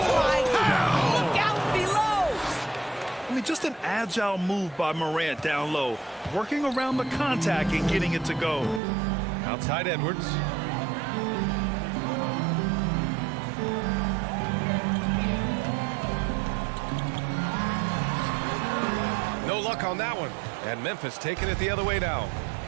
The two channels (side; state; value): left; drops out; at 8.8 s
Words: my God! Look out below! I mean, just an agile move by Morant down low, working around the contact and getting it to go. Outside Edwards. No luck on that one. And Memphis taking it the other way now.